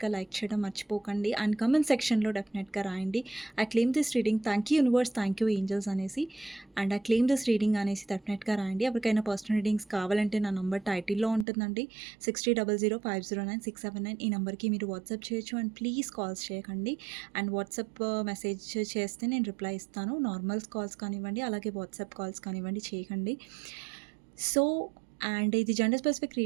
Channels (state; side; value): drops out; left; at 11.5 s